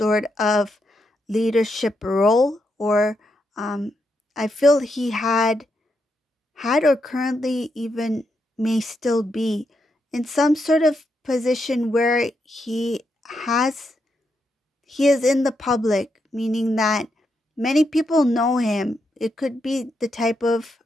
of leadership role, or I feel he had or currently even may still be in some sort of position where he is in the public, meaning that many people know him. It could be the type of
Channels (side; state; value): both; normal; correlation 0.82